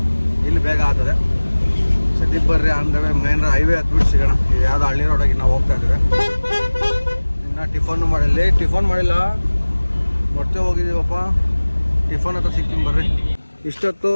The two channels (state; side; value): inverted; both; correlation -1.00